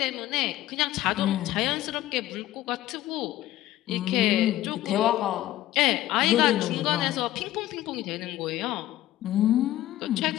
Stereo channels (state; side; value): quieter; right; 14.8 dB